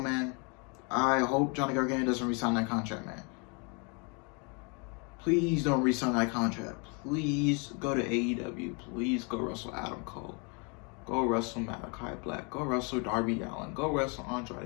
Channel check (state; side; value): quieter; right; 33.8 dB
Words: I hope Johnny Gargano doesn't re-sign that contract, man. Please don't re-sign that contract. Please go to AEW. Please go wrestle Adam Cole. Go wrestle Malachi Black. Go wrestle Darby Allin. Go wrestle